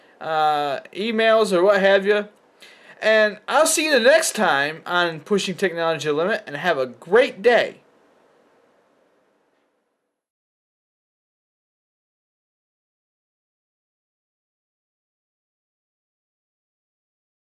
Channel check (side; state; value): both; identical; correlation 1.00